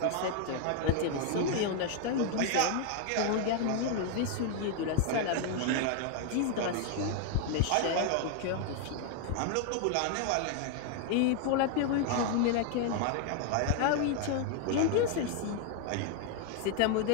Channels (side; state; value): both; different; correlation 0.00